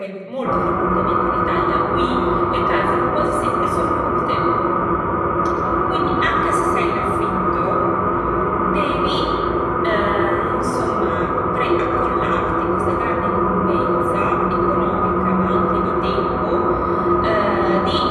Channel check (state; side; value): identical; both; correlation 1.00